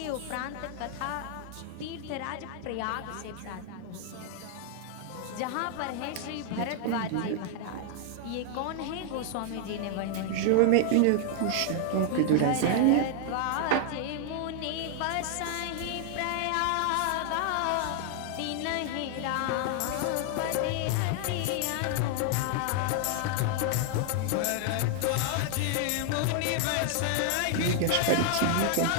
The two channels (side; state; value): both; different; correlation 0.00